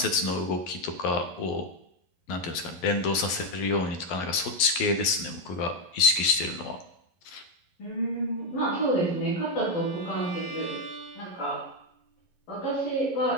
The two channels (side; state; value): right; late; 11 ms